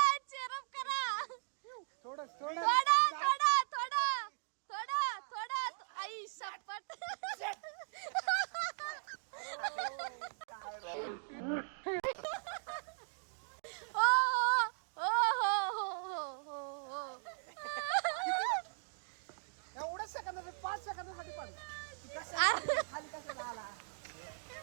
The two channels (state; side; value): silent; left; digital silence